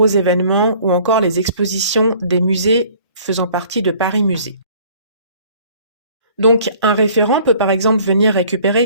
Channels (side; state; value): both; inverted; correlation -0.54